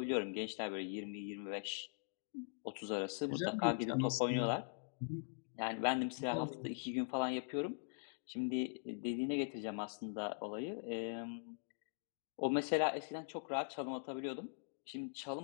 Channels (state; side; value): silent; right; digital silence